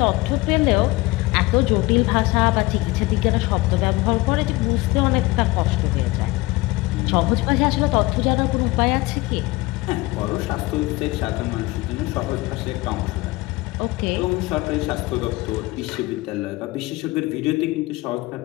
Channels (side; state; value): right; quieter; 21.3 dB